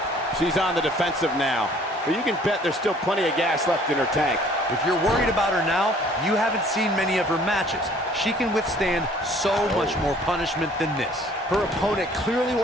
She's on the defensive now. But you can bet there's still plenty of gas left in her tank. If you're worried about her now, you haven't seen many of her matches. She can withstand so much more punishment than this. Her opponent clearly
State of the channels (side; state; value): both; normal; correlation 0.56